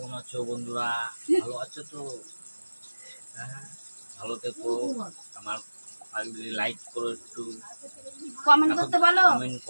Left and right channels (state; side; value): inverted; both; correlation -1.00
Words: আছো বন্ধুরা? ভালো আছো তো? হ্যাঁ, ভালো থেকো। আমার লাইক করো, একটু কমেন্ট করতে বলো, কমেন্ট